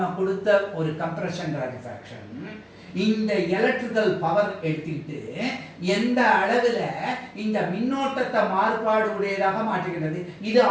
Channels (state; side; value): identical; both; correlation 1.00